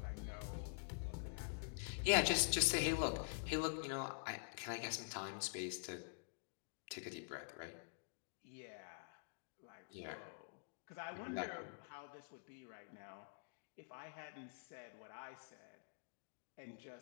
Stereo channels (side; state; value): right; silent; digital silence